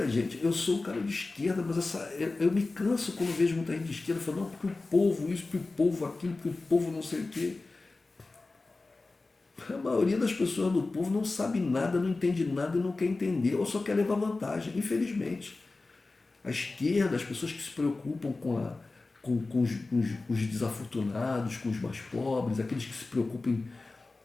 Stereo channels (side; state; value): right; quieter; 3.5 dB